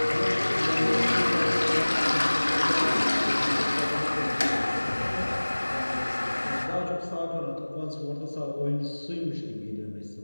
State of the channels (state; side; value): inverted; both; correlation -1.00